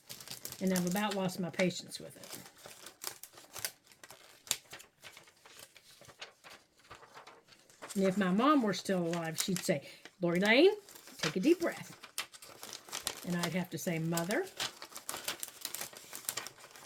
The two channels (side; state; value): both; identical; correlation 1.00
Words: And I've about lost my patience with it. And if my mom were still alive, she'd say, Lori Lane, take a deep breath. And I'd have to say, Mother.